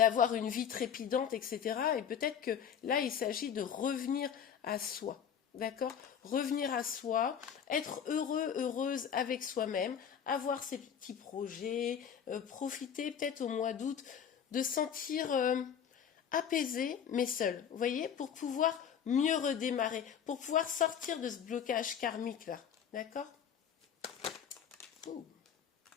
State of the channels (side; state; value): right; quieter; 8.1 dB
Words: une vie trépidante, etc. Et peut-être que là, il s'agit de revenir à soi. D'accord? Revenir à soi, être heureux, heureuse avec soi-même, avoir ses petits projets, profiter peut-être au mois d'août de sentir apaisé, mais seul. Vous voyez? Pour pouvoir mieux redémarrer, pour pouvoir sortir de ce blocage karmique là. D'accord?